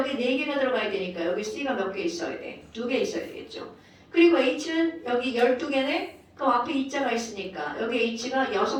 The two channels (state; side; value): identical; both; correlation 1.00